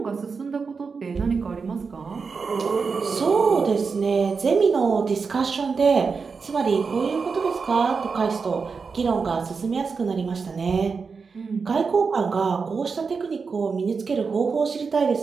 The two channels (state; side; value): quieter; left; 5.1 dB